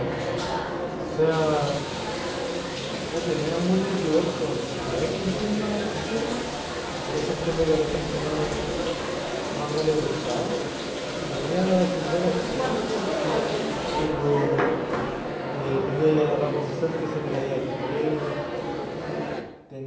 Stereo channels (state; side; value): identical; both; correlation 1.00